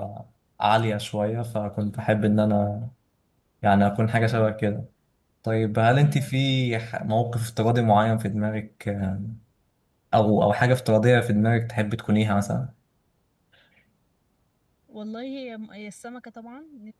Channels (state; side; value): identical; both; correlation 1.00